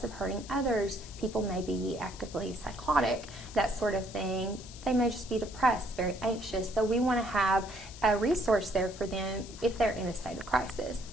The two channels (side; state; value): left; noise; hiss, 16 dB below the sound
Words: of hurting others. People may be actively psychotic, that sort of thing. They may just be depressed, very anxious. So we want to have a resource there for them if they're in a state of crisis.